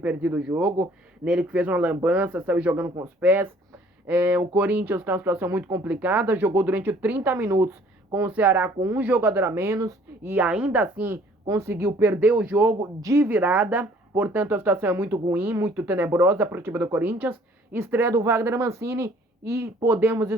o jogo. Nele que fez uma lambança, saiu jogando com os pés. O Corinthians está numa situação muito complicada, jogou durante 30 minutos com o Ceará com um jogador a menos e ainda assim conseguiu perder o jogo de virada. Portanto, a situação é muito ruim, muito tenebrosa para o time do Corinthians. Estreia do Wagner Mancini e podemos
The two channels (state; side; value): normal; both; correlation 0.56